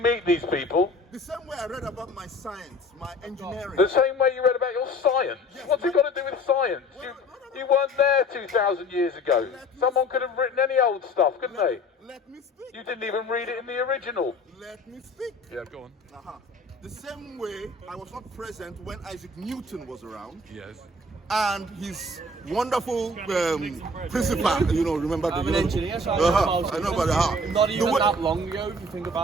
meet these people? the same way I read about my science, my engineering. The same way you read about your science? What's it got to do with science? You weren't there 2,000 years ago. Someone could have written any old stuff, couldn't they? Let me speak. You didn't even read it in the original. Let me speak. Yeah, go on. The same way I was not present when Isaac Newton was around, Yes. and his wonderful principal, remember the I'm an engineer, so I know about I know about the how. Not The even way- that long ago, if you think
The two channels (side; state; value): both; normal; correlation 0.48